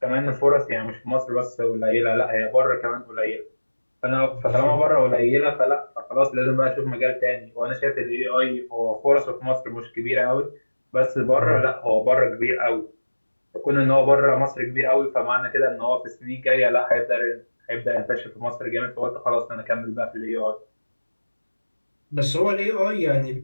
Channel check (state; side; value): inverted; both; correlation -1.00